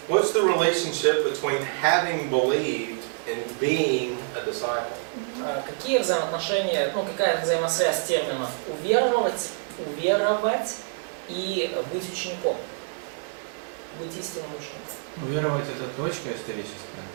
what's the relationship between having believed and being a disciple? Какие взаимоотношения, ну какая взаимосвязь терминов уверовать и быть учеником, быть истинным учеником? Уверовать — это точка историческая.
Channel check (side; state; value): left; silent; 61 dB below the other